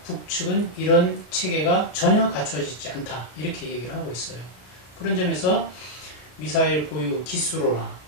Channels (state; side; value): late; right; 33 ms